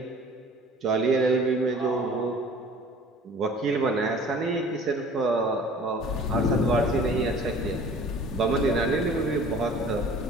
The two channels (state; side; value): normal; both; correlation 0.47